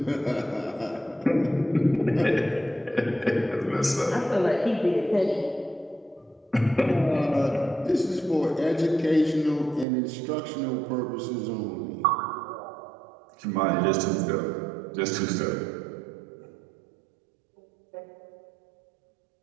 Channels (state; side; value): drops out; left; at 9.9 s